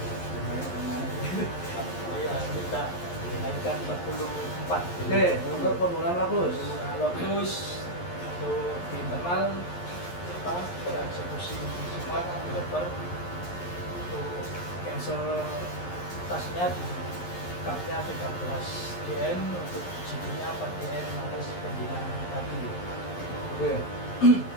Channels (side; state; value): right; late; 11 ms